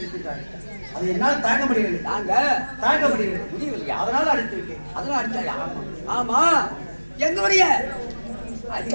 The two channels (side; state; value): both; inverted; correlation -1.00